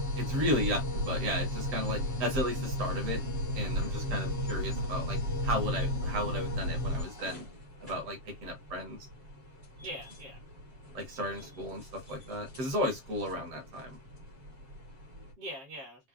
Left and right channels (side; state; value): left; late; 7.5 ms